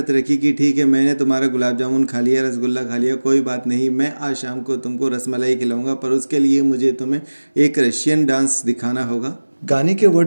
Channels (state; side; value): inverted; both; correlation -1.00